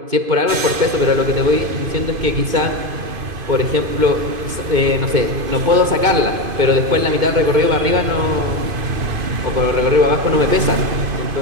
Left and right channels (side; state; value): left; late; 2.5 ms